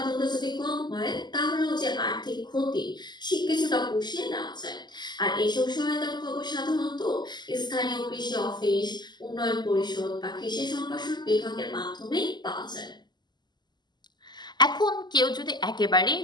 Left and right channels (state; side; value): late; right; 0.21 ms